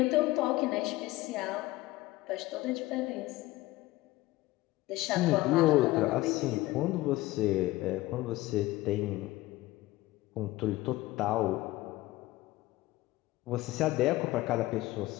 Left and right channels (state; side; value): quieter; right; 18.3 dB